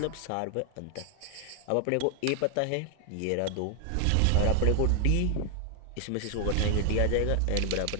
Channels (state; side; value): different; both; correlation 0.00